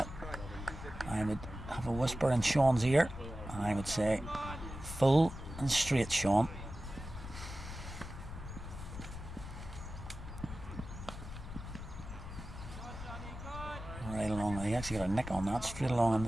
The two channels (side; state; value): left; noise; rumble, 10 dB below the sound